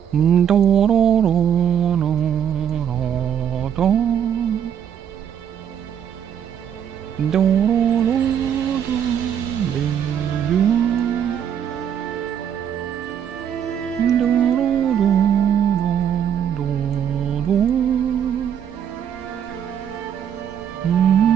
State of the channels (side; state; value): left; quieter; 8.9 dB